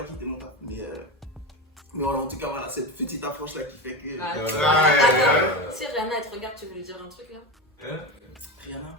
quitter mon taf. Mais voilà, en tout cas, voilà, cette petite approche là qui fait que. Ah, Ouais. si Rihanna, elle te regarde, tu veux lui dire un truc là? Rihanna.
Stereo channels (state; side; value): normal; both; correlation 0.20